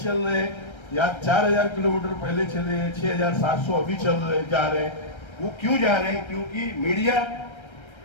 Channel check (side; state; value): right; late; 1.3 ms